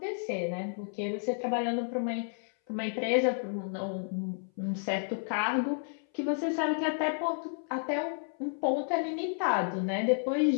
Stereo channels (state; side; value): silent; right; 57 dB below the other